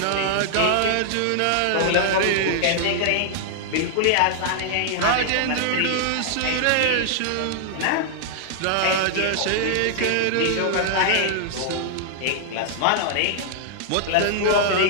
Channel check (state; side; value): different; both; correlation -0.01